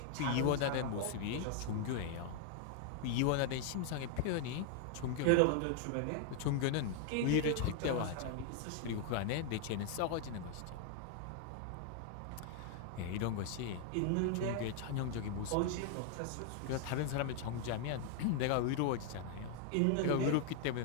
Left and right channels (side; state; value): both; different; correlation 0.00